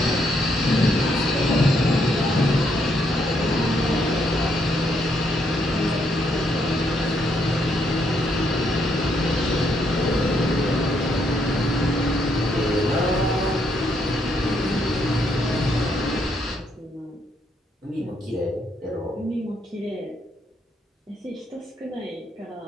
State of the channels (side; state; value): both; normal; correlation 0.74